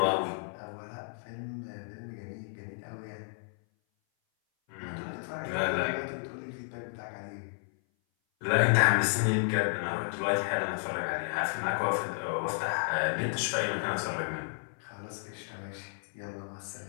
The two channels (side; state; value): right; silent; 56 dB below the other